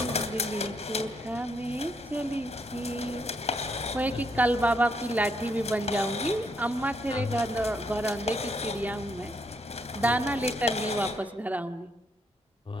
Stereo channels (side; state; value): both; normal; correlation 0.74